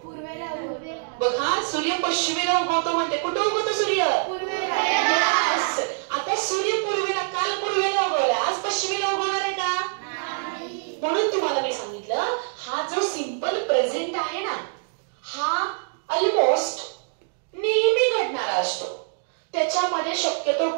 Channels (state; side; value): silent; left; 62 dB below the other